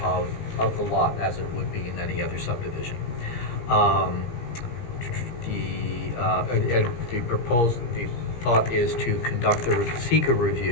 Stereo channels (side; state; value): right; late; 17 ms